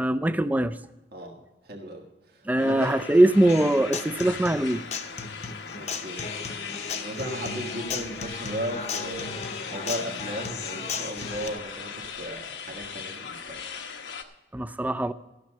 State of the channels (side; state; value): both; normal; correlation 0.77